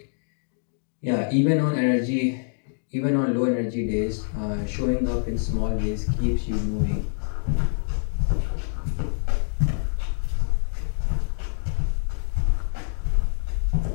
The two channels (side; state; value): right; silent; digital silence